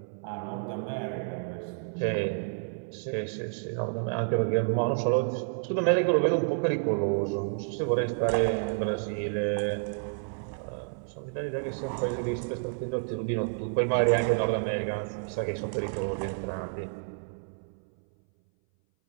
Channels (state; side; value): silent; left; 58 dB below the other